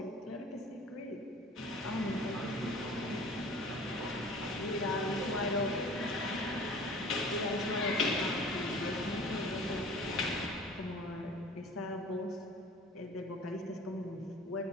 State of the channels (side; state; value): both; normal; correlation 0.44